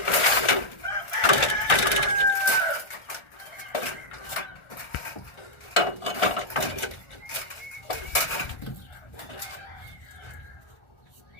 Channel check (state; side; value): late; right; 1.4 ms